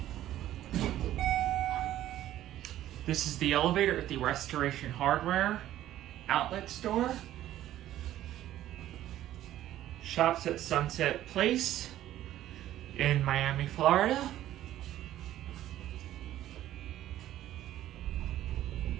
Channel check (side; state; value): left; quieter; 13.1 dB